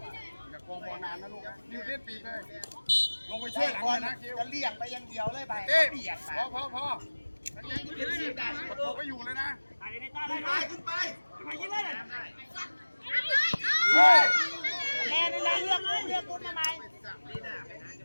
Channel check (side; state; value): both; inverted; correlation -1.00